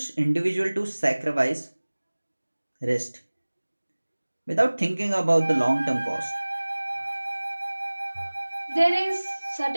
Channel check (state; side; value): inverted; both; correlation -1.00